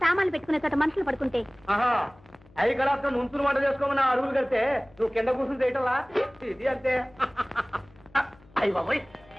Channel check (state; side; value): noise; left; hum, 27 dB below the sound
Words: సామాన్లు పెట్టుకునే చోట మనుషులు పడుకుంటే. ఆహా అవి కలాప్తం ముంచులు వంట చేసుకోమని అరువులు కడితే నువ్వు కింద కూర్చుని చేయటంలా ఇది అంతే. అయ్యి బాబోయ్